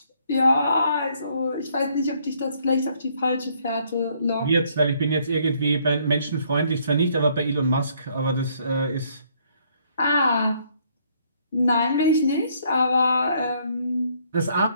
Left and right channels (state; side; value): inverted; both; correlation -0.66